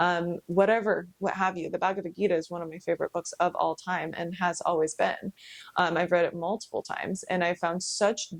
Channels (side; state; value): both; identical; correlation 1.00